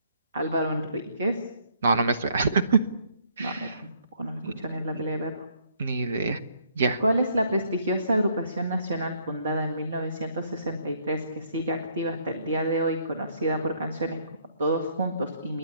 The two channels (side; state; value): both; inverted; correlation -0.67